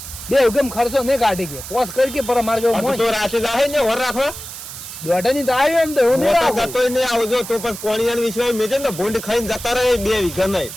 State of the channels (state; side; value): noise; right; hiss, 11 dB below the sound